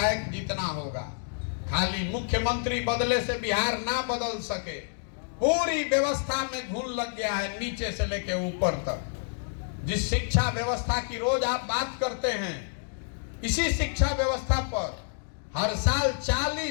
जीतना होगा। खाली मुख्यमंत्री बदले से बिहार ना बदल सके। पूरी व्यवस्था में घुन लग गया है, नीचे से लेके ऊपर तक। जिस शिक्षा व्यवस्था की रोज आप बात करते हैं, इसी शिक्षा व्यवस्था पर हर साल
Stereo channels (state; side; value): silent; right; digital silence